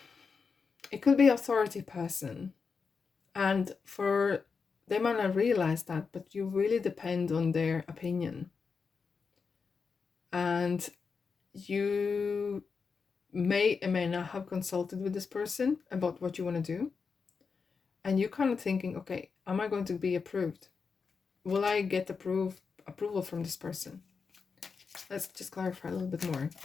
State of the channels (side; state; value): right; quieter; 5.3 dB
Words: could be authority person. And they might not realize that, but you really depend on their opinion. And you may or may not have consulted with this person about what you want to do. And you're kind of thinking, okay, am I going to be approved? Will I get approval from this person? Let's just clarify a little bit more.